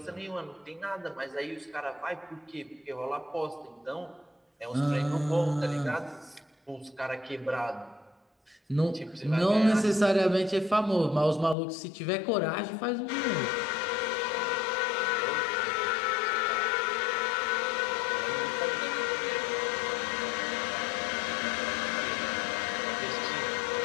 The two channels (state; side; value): drops out; right; at 11.6 s